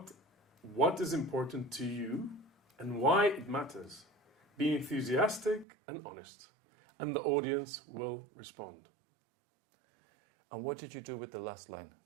what is important to you and why it matters. Be enthusiastic and honest, and the audience will respond. And what did you do with the last line?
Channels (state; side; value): drops out; left; at 5.7 s